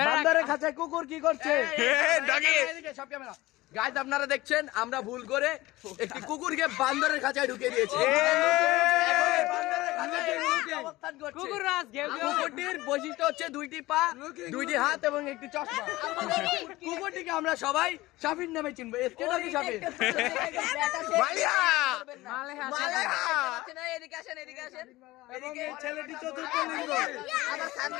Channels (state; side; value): quieter; right; 18.8 dB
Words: বান্দরের কাছে কুকুর কি করছে ডগি সব ক্যামেরা গাইস আপনারা দেখছেন আমরা ভুল করে একটি কুকুরকে বান্দরের খাঁচায় ঢুকিয়ে দিয়েছি কুকুরটির বৈশিষ্ট্য হচ্ছে দুইটি পা দুইটি হাত এবং একটি চশমা কুকুরটিকে আমরা সবাই শাফির নামে চিনবো এসকে নাকি শাফির মালিয়া ছেলেটি চতুর্থ লিঙ্গ